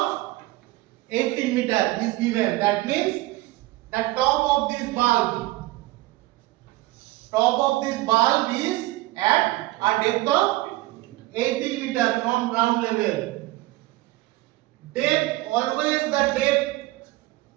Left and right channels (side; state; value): left; quieter; 18.8 dB